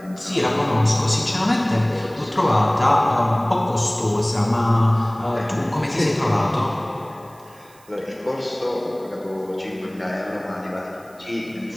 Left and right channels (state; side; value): noise; right; hiss, 27 dB below the sound